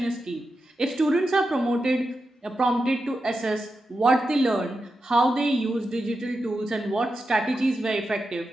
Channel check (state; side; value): normal; both; correlation 0.89